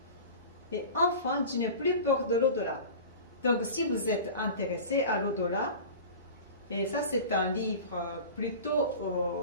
et enfin, je n'ai plus peur de l'au-delà. Donc si vous êtes intéressé à l'au-delà, et ça c'est un livre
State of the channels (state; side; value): inverted; both; correlation -0.36